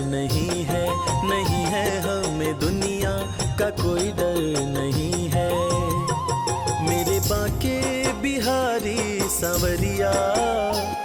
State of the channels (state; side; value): identical; both; correlation 1.00